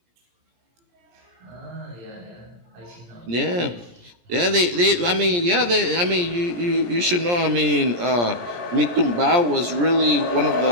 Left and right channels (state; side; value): late; left; 17 ms